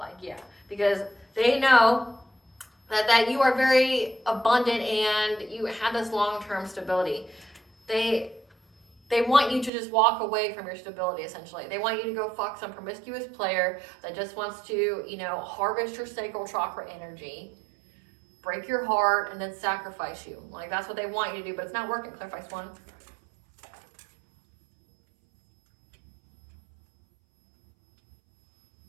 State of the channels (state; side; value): drops out; left; at 9.7 s